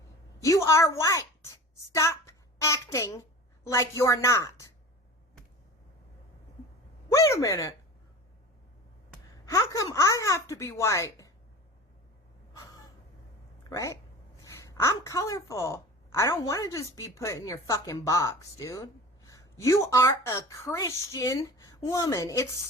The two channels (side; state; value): both; normal; correlation 0.37